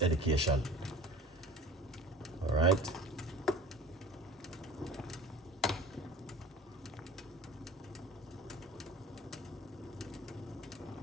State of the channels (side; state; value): both; normal; correlation 0.41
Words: education. All right.